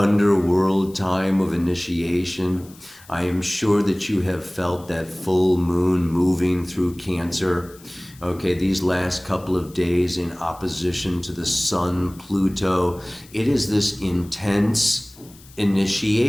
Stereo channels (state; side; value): noise; left; hiss, 24 dB below the sound